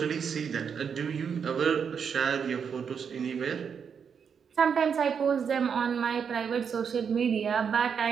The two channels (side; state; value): left; quieter; 6.8 dB